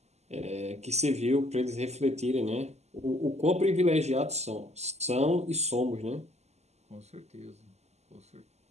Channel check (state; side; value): late; left; 0.32 ms